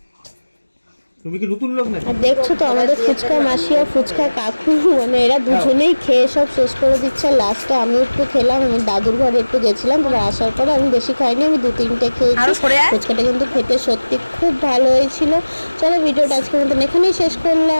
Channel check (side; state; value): both; inverted; correlation -1.00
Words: তুমি কি নতুন লোক না? আর দেখছো তো আমাদের ফুচকা মাসি আর ফুচকা কাকু, মানে এরা দুজনেই খেয়ে সব শেষ করে দিচ্ছে। লাস্টে আমি একটু খেলাম, আমি দাদুর ঘরে একটু গেছিলাম, তারপর আসার পরে আমি বেশি খাইনি, আমি 2-3টে খেয়েছি। ফুচকাটা কিন্তু খেতে সত্যি খুব ভালো হয়েছিল। চলো, ভিডিওটা আজকের মতন এখানেই শেষ